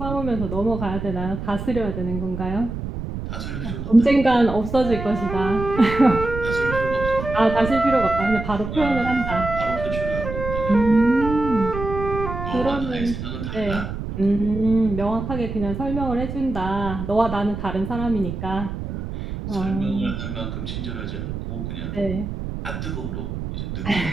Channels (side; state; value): right; noise; rumble, 6 dB below the sound